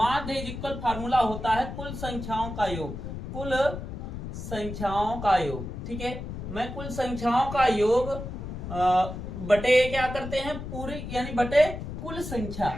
इज इक्वल फार्मूला होता है कुल संख्याओं का योग, कुल संख्याओं का योग, ठीक है। मैं कुल संख्याओं का योग बटे क्या करते हैं पूरी यानी बटे कुल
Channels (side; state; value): left; noise; rumble, 7 dB below the sound